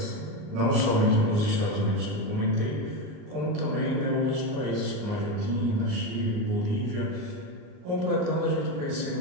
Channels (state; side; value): late; left; 38 ms